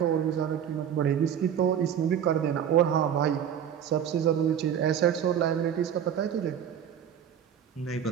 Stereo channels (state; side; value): quieter; left; 9.0 dB